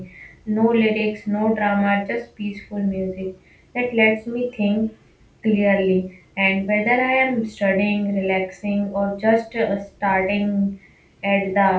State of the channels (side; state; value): both; identical; correlation 1.00